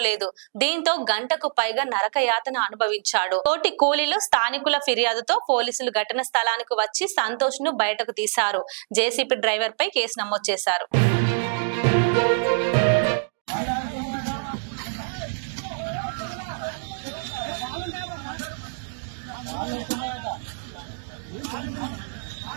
దీంతో గంటకు పైగా నరకయాతన అనుభవించాడు. తోటి కూలీలు స్థానికుల ఫిర్యాదుతో పోలీసులు ఘటన స్థలానికి వచ్చి సంతోష్ ను బయటకు తీశారు. జేసీబీ డ్రైవర్ పై కేసు నమోదు చేశారు.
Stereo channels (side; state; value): left; silent; digital silence